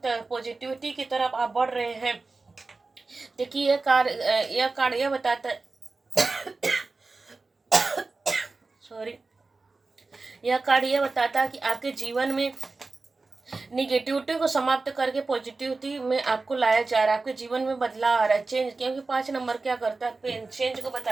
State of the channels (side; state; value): left; quieter; 3.7 dB